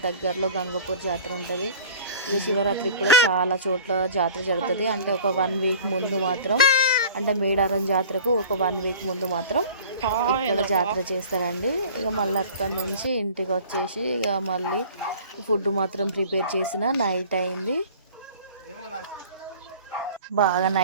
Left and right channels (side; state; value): both; inverted; correlation -0.44